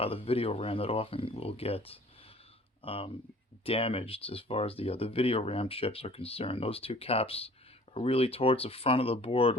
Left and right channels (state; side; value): normal; both; correlation 0.50